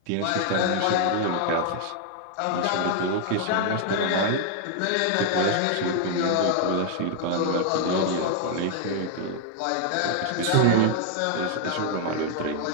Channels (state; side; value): different; both; correlation 0.00